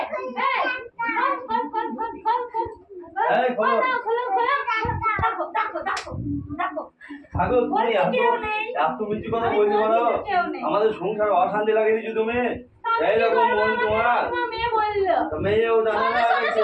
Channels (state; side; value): identical; both; correlation 1.00